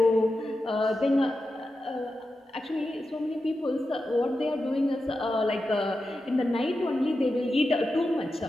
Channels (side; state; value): both; normal; correlation 0.90